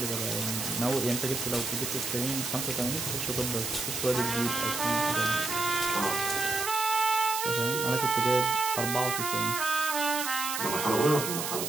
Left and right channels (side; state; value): right; noise; hiss, 3 dB below the sound